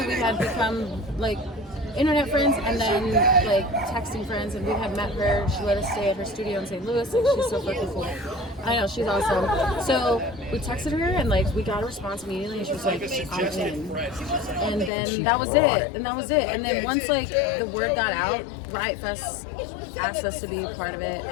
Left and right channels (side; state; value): right; drops out; at 14.9 s